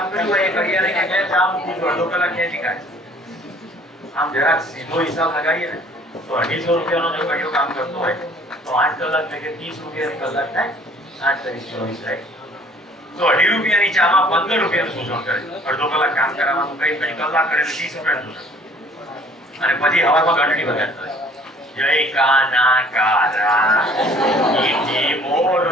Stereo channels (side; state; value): both; normal; correlation 0.55